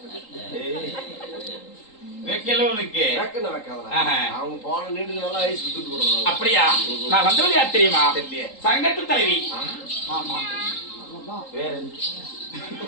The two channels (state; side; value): late; right; 3.8 ms